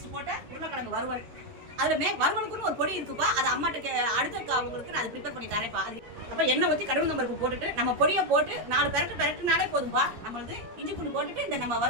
போட்ட உருளைக்கிழங்கு வறுவல். அதுல வறுவலுக்குன்னு ஒரு பொடி இருக்குப்பா. அது அம்மாட்ட அடுத்த அவங்களுக்கு நான் ப்ரிப்பேர் பண்ணி தரேன்ப்பா. அப்ப எண்ணெய் ஊத்தி கடுகு பருப்பு போட்டுட்டு நம்ம பொடியை போட்டு 4 பெரட்டுனாலே போதும்பா. நம்மளுது இஞ்சி பூண்டு போட்டுட்டு இந்த நம்ம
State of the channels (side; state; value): left; late; 13 ms